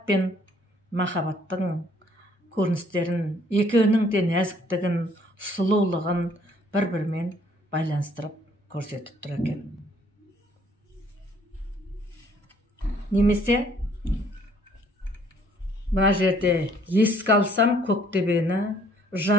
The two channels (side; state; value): both; normal; correlation 0.62